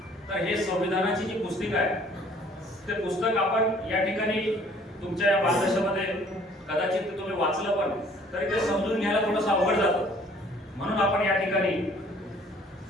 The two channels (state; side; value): normal; both; correlation 0.56